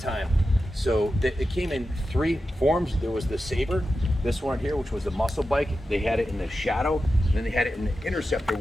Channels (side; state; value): both; normal; correlation 0.91